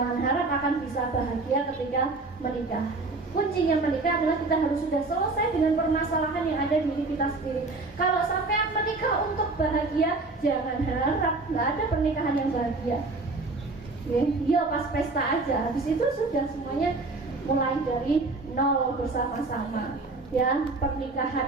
akan bisa bahagia ketika menikah. Kuncinya menikah adalah kita harus sudah selesai dengan permasalahan yang ada di diri kita sendiri. Kalau sampai menikah untuk bahagia, jangan harap, nggak ada pernikahan yang bahagia. Ya pas pesta aja, habis itu sudah semuanya mulai dari nol bersama-sama. Ya,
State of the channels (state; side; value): quieter; left; 3.5 dB